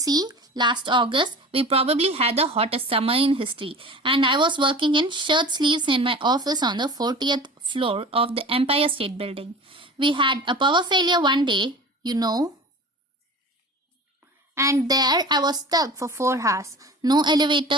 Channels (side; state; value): both; normal; correlation 0.37